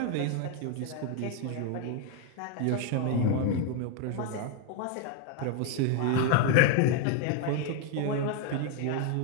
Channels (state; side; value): different; both; correlation 0.01